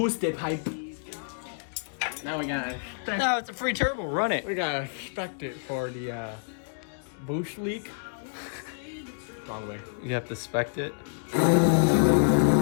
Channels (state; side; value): silent; right; digital silence